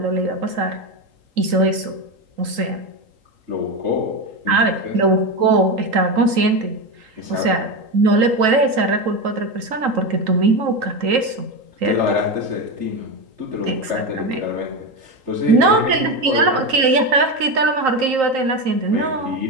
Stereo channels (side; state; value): left; late; 3.8 ms